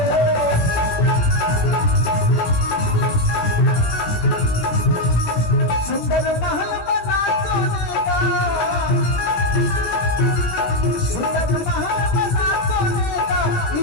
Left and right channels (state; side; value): late; right; 18 ms